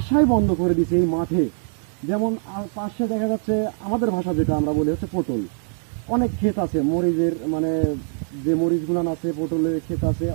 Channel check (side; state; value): left; silent; 56 dB below the other